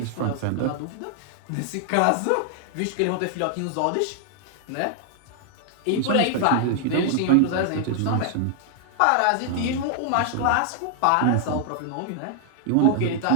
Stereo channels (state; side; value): different; both; correlation 0.00